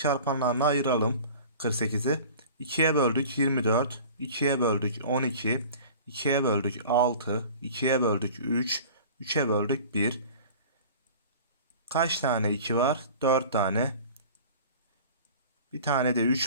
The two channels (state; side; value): inverted; both; correlation -0.42